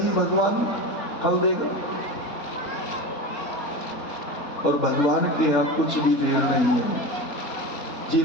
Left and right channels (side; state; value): right; late; 3.9 ms